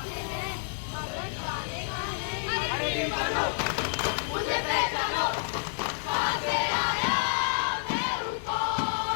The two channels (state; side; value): silent; right; 58 dB below the other